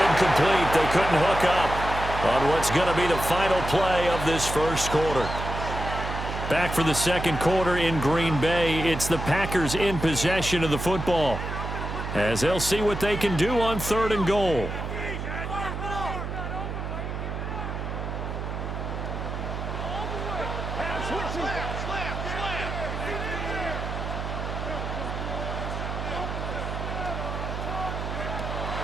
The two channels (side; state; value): right; noise; hum, 5 dB below the sound